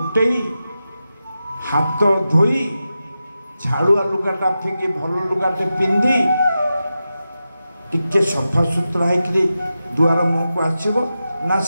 ହାତ ଧୋଇ ଝାଳୁଆ ଲୁଗାଟା ଫିଙ୍ଗି ଭଲ ଲୁଗାଟେ ପିନ୍ଧି ଟିକେ ସଫା ସୁତରା ହେଇକିରି ଦୁଆର ମୁହଁକୁ ଆସିବ ନା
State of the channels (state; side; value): inverted; both; correlation -0.91